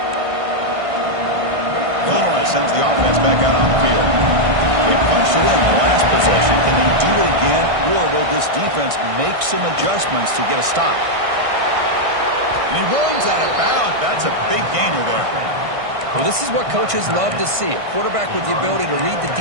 Illinois sends the offense back out on the field. They punched it in the last possession. Can they do it again, or will this defense make some adjustments to get a stop? And he runs out of bounds. That's a big gainer there. Well, this is what coaches love to see. A quarterback with the ability to read the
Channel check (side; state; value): left; late; 1.6 ms